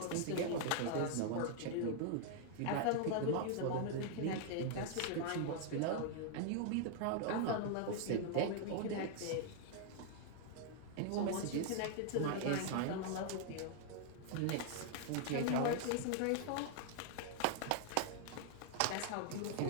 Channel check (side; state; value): both; different; correlation 0.00